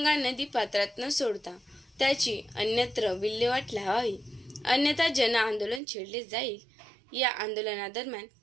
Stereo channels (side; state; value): left; drops out; at 5.8 s